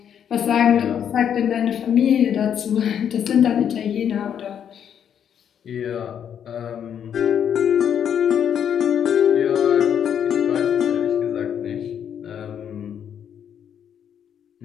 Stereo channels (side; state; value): right; quieter; 8.7 dB